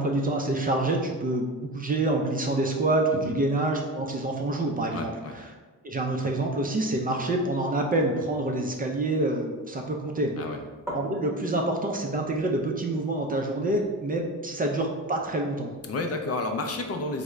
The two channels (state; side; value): normal; both; correlation 0.27